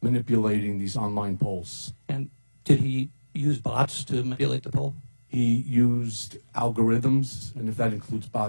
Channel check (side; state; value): both; inverted; correlation -1.00